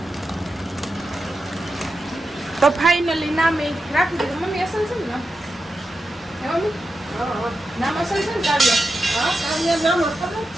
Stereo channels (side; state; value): both; normal; correlation 0.89